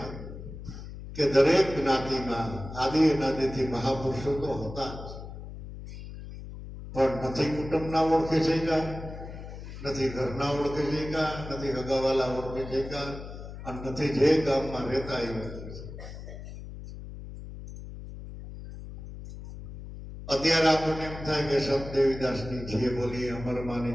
કે દરેક જ્ઞાતિમાં આદિ અનાદિથી મહાપુરુષો તો હતા જ, પણ નથી કુટુંબના ઓળખે છે કા, નથી ઘરના ઓળખે છે કા, નથી હગાવાલા ઓળખે છે કા, અને નથી જે ગામમાં રહેતા એ ઓળખે છે. અત્યારે આપણને એમ થાય કે સંત દેવીદાસની જે બોલી, અમરમાની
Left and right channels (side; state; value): left; noise; hum, 11 dB below the sound